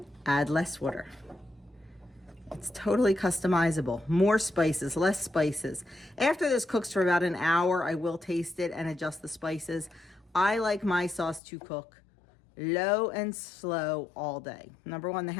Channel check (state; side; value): drops out; right; at 11.4 s